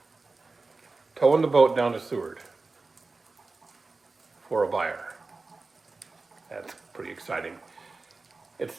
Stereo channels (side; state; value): left; quieter; 3.7 dB